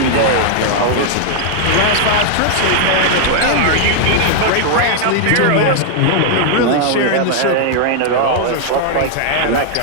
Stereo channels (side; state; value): both; different; correlation -0.01